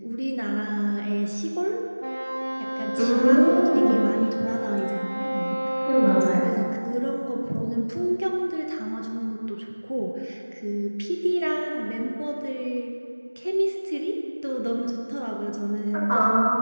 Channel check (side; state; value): both; inverted; correlation -1.00